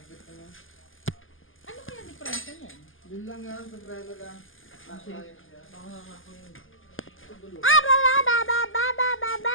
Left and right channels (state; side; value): late; right; 0.58 ms